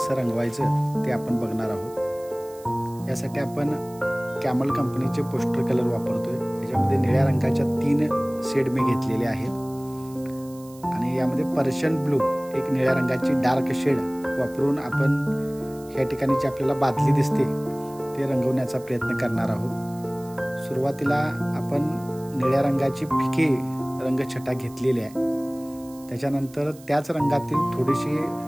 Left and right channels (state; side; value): noise; right; hiss, 23 dB below the sound